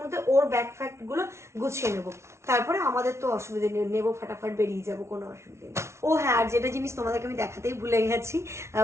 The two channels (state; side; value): late; left; 0.13 ms